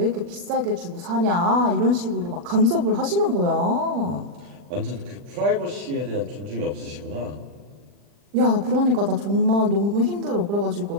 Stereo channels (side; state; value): left; late; 40 ms